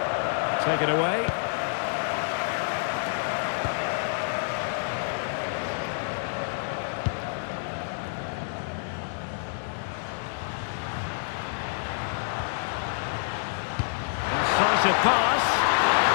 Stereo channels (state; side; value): silent; right; digital silence